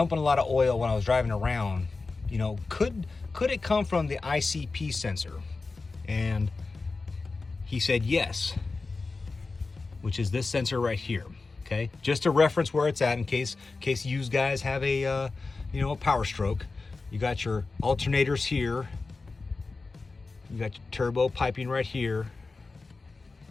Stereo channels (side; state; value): right; quieter; 3.9 dB